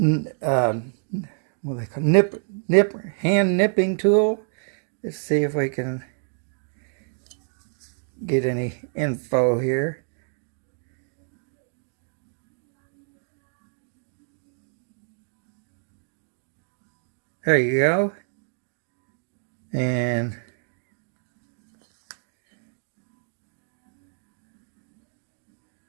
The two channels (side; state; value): left; silent; 60 dB below the other